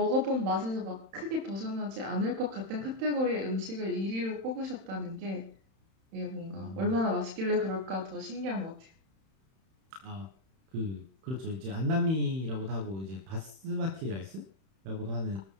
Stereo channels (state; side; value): late; left; 31 ms